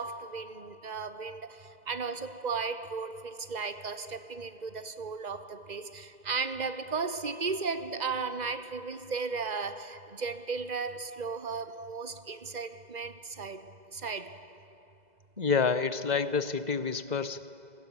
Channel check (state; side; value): late; left; 2.0 ms